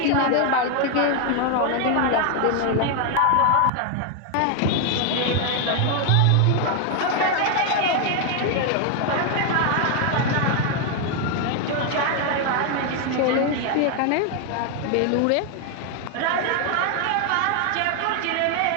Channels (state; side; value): different; both; correlation 0.01